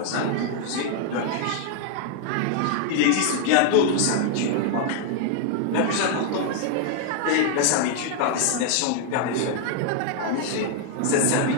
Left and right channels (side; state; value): both; different; correlation 0.00